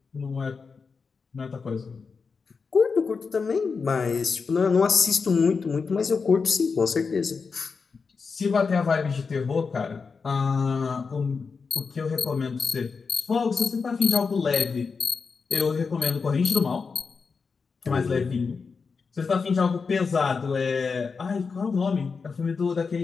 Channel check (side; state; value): right; quieter; 5.1 dB